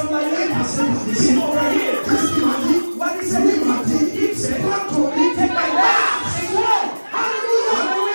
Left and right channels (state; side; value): inverted; both; correlation -1.00